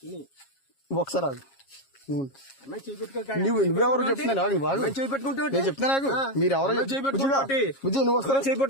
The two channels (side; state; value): right; late; 7.4 ms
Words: తుని. ఒకసారి ఆగు. నువ్వెవరు చెప్తున్నాను నేను చెప్తున్నా నాకు మీరు ఎవరో బుజ్జి నువ్వు వస్తారా